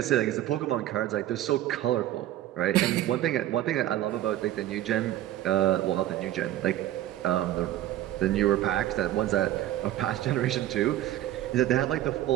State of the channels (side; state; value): left; quieter; 13.6 dB